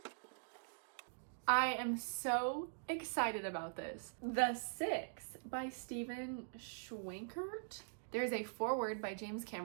I am so excited about this. The Six by Stephen Schwenkert. There's a foreword by James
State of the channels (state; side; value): silent; left; digital silence